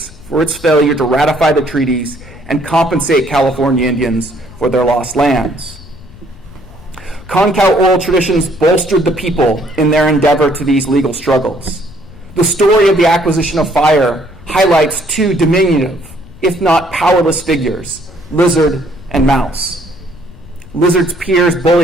for its failure to ratify the treaties and compensate California Indians for their lost lands. Concow oral traditions bolstered the people in their endeavor to these legal struggles. The story of the acquisition of fire highlights 2 diminutive, if not powerless figures, Lizard and Mouse. Lizard's peers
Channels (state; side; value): noise; left; rumble, 21 dB below the sound